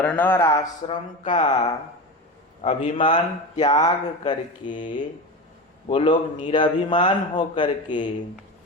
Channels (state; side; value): normal; both; correlation 0.24